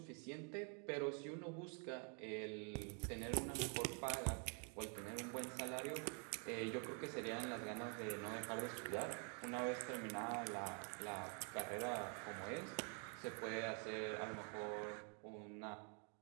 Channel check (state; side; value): quieter; left; 39.8 dB